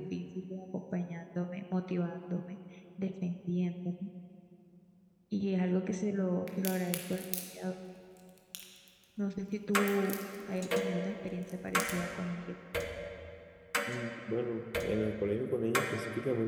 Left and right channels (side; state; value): both; identical; correlation 1.00